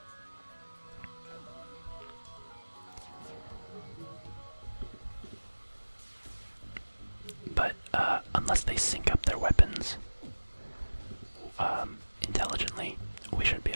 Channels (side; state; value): both; inverted; correlation -1.00